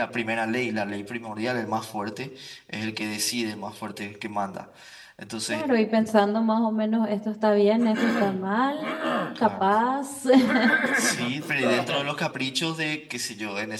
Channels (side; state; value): both; identical; correlation 1.00